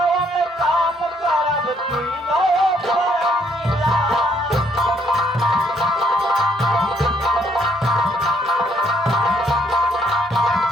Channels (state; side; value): normal; both; correlation 0.69